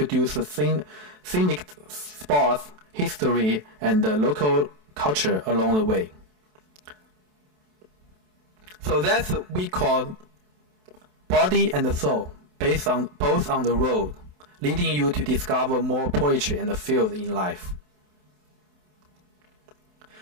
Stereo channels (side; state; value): left; late; 27 ms